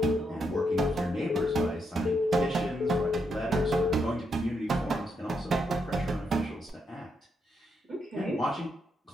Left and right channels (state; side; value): normal; both; correlation 0.80